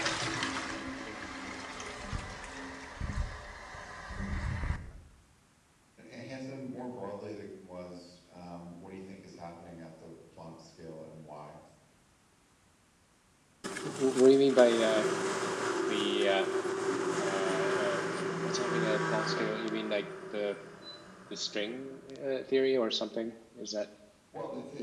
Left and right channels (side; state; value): both; identical; correlation 1.00